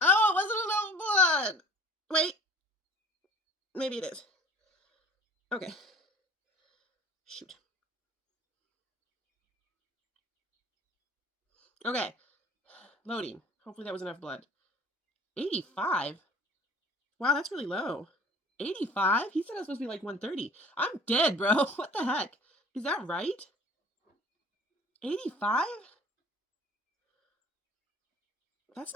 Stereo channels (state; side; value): normal; both; correlation 0.48